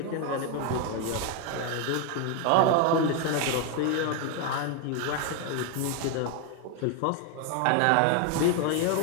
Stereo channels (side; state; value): both; different; correlation 0.01